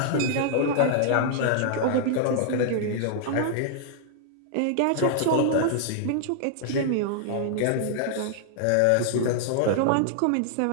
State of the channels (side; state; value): both; different; correlation -0.01